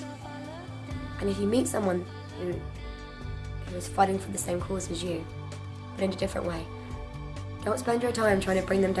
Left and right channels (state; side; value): identical; both; correlation 1.00